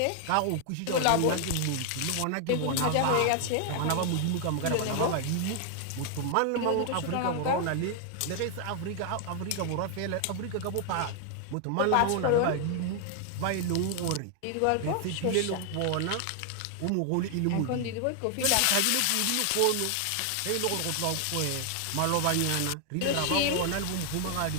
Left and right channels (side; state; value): both; different; correlation 0.00